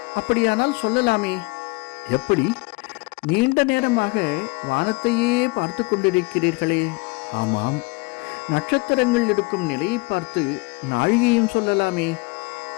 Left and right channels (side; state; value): right; quieter; 26.3 dB